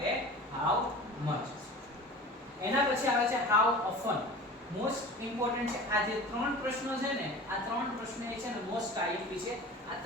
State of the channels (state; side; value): normal; both; correlation 0.38